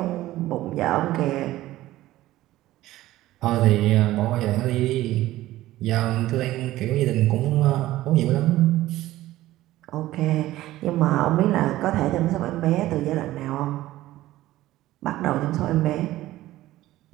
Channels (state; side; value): quieter; left; 15.8 dB